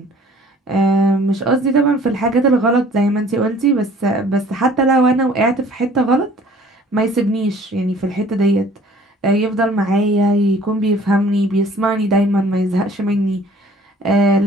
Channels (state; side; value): normal; both; correlation 0.53